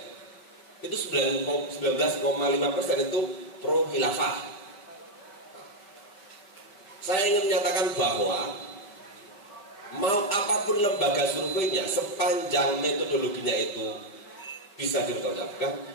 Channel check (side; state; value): right; late; 5.1 ms